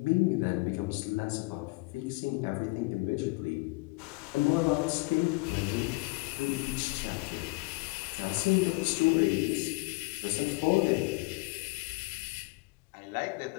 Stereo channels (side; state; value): right; quieter; 25.8 dB